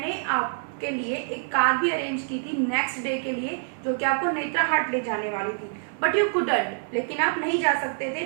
आपके लिए एक कार भी अरेंज की थी नेक्स्ट डे के लिए, जो कि आपको नेत्रा हाट ले जाने वाली थी. But you couldn't. लेकिन आप नहीं जा सकते थे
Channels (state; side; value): silent; left; 61 dB below the other